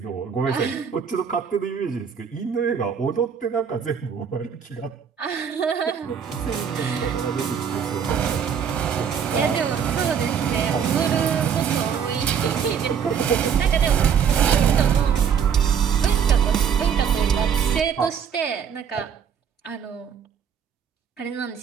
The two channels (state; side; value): quieter; left; 7.5 dB